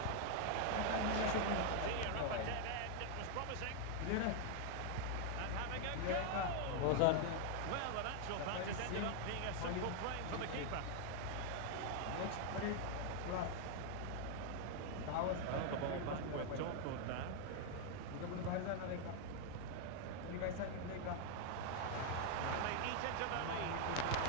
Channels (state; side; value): different; both; correlation 0.00